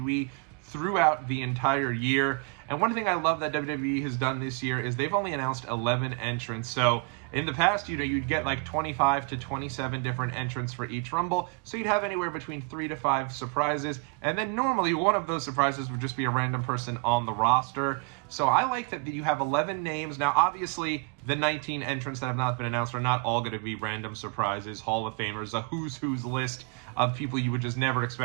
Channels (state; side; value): quieter; left; 34.1 dB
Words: throughout the entire year. And one thing I love that WWE has done this year is they've only announced 11 entrants. So in the past, you'd get like 25 to 27 different entrants for each Rumble. So you'd have anywhere between 3 to 5 surprises. And then normally one of those surprises would just be a random person on the roster. So I like that you have 11 names. Now, obviously, the 19 entrants that have not been announced are not all going to be random surprises, Hall of Famers, a who's who's list of people you would just never